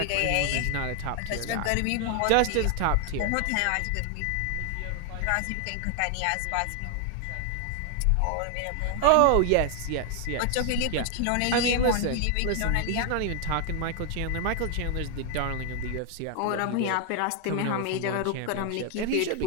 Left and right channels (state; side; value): different; both; correlation 0.00